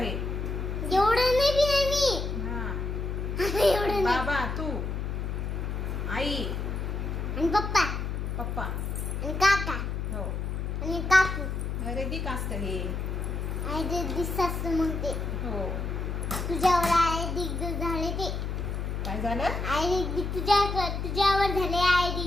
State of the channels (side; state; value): left; noise; hum, 3 dB below the sound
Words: एवढं नाही पिणार मी. हा एवढं नाही. बाबा तू आई आणि पप्पा पप्पा आणि काका हो आणि काकू. अरे दी कास्त हे. आई ते दिसतात मग ते हो तुझ्यावर आई दिग्ग झाले ते. काय झालं आई दिग्ग तुझ्यावर झाले आई